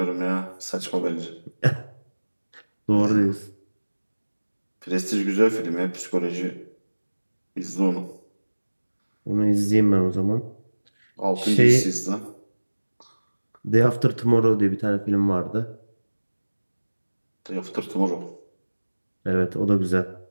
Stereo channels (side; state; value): both; inverted; correlation -1.00